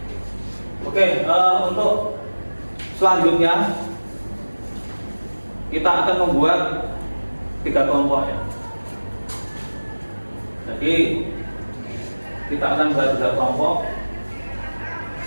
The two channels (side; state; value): both; inverted; correlation -1.00